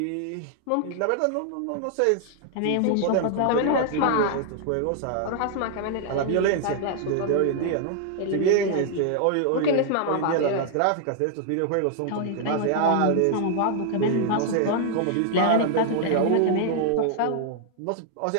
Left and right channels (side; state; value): both; different; correlation 0.00